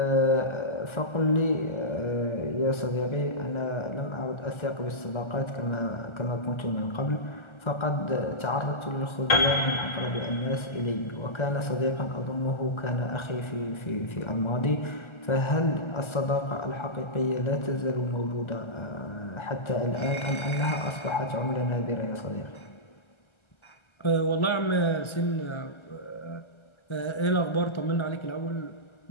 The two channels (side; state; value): right; late; 1.3 ms